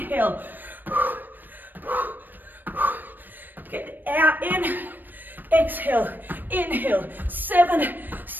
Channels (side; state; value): left; late; 0.091 ms